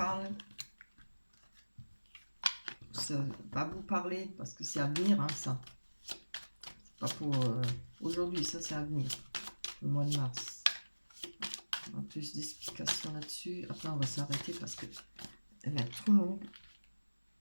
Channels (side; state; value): both; inverted; correlation -1.00